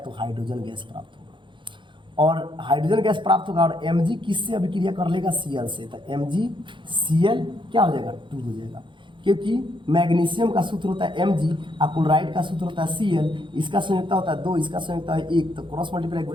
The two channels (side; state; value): left; late; 0.23 ms